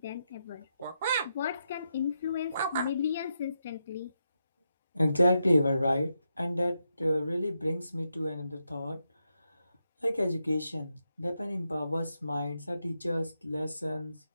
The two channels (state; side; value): inverted; both; correlation -0.84